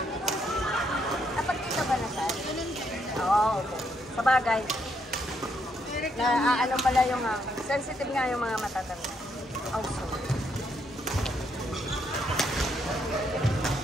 Dapat kita ba na saan? Oo, okay. Sabagay. Ano pala yung sensitive nga yung mga matatanda. Also.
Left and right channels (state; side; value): normal; both; correlation 0.75